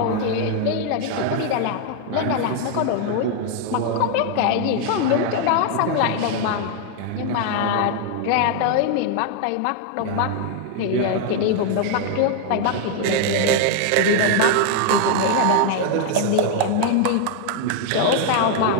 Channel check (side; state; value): both; different; correlation 0.00